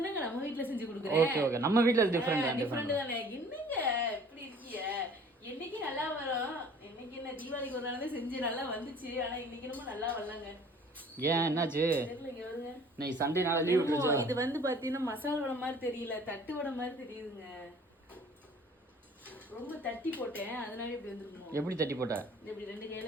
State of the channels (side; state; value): both; normal; correlation 0.51